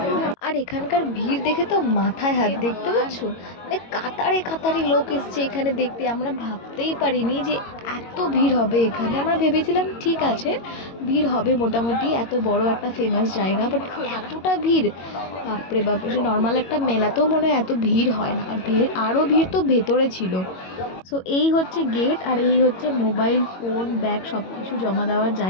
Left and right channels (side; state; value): right; late; 22 ms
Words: আর এখানকার ভিড় দেখে তো মাথায় হাত, দেখতে পাচ্ছ মানে কাতারে কাতারে লোক এসছে এখানে দেখতে। আমরা ভাবতেই পারিনি যে এত ভিড় হবে এখানে। আমরা ভেবেছিলাম ঠিক আছে ভিড় হবে মোটামুটি, এত বড় একটা ফেমাস জায়গা, বাট এতটা ভিড় বাপরে বাপ! যে নর্মাল একটা মেলাতেও মনে হয় এত ভিড় হয় না। আর ভিড়, আরও ভিড় তো ভেতরে ছিল। সো এই হচ্ছে গেট আর এই হচ্ছে মোবাইল ফোন ব্যাগ সব কিছু জমা দেওয়ার